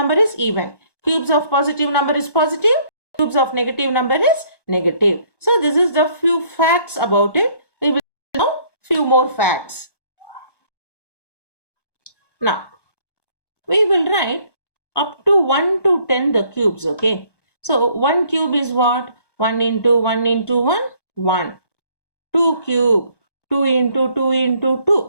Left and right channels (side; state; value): right; late; 1.1 ms